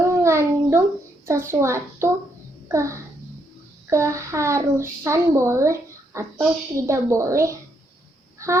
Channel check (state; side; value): normal; both; correlation 0.75